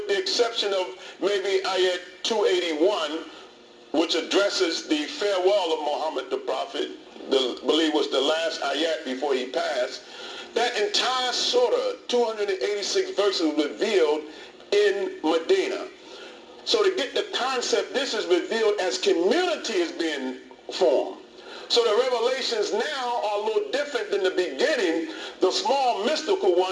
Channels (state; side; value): identical; both; correlation 1.00